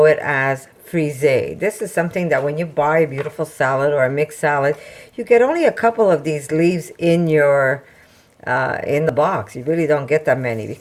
it as frisee. This is something that when you buy a beautiful salad or a mixed salad, you get only a couple of these leaves in your in the box. You really don't get that many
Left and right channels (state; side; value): identical; both; correlation 1.00